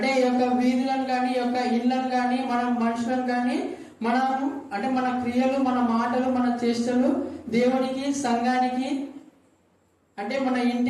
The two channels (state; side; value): identical; both; correlation 1.00